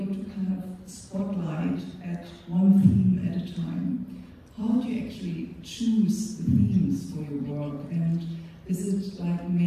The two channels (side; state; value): both; identical; correlation 1.00